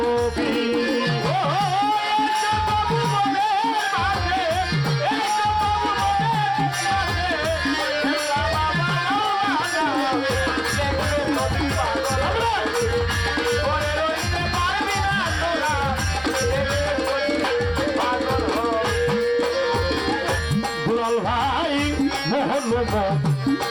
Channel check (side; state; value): both; identical; correlation 1.00